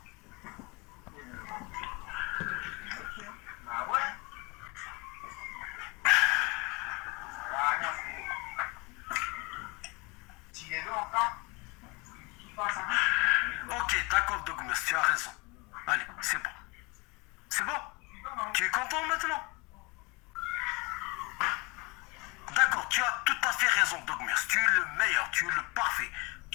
Ah ouais. Tu es là encore? Ok, d'accord, Dogmus, tu as raison. Allez, c'est bon. C'est bon? Tu es content maintenant? D'accord, tu as tout à fait raison, Dogmus. Tu es le meilleur, tu es le parfait.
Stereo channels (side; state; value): right; quieter; 27.2 dB